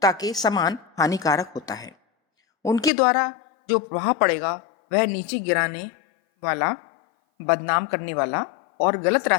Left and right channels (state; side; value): drops out; right; at 2.9 s